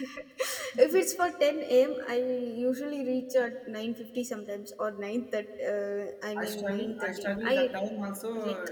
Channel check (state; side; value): identical; both; correlation 1.00